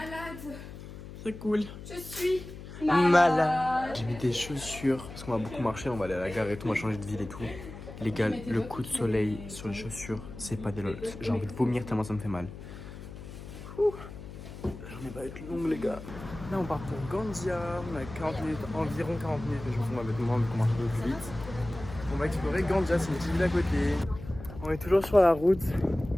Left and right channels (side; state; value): left; noise; hum, 13 dB below the sound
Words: Ça coule. Je suis Malade. malade. J'ai mis des chaussures parce qu'on va beaucoup marcher, on va aller à la gare et tout, on va changer de ville et tout. Les gars, le coup de soleil sur les chaussures, c'est pas des lol. J'ai envie de vomir tellement ça me fait mal. La journée va être longue, les gars. Là, on part pour Gandia. On a 40 minutes, environ 40 minutes, mais je me fous, on va mettre moins vu qu'on marche un peu plus vite. On va explorer Gandia, c'est une petite ville à côté. On est toujours sur la route.